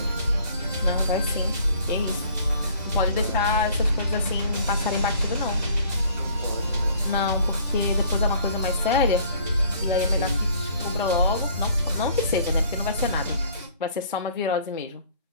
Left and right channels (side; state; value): both; inverted; correlation -0.55